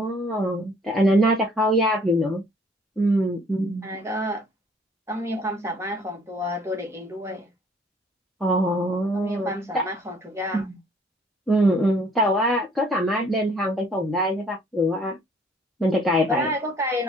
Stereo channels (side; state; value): both; normal; correlation 0.59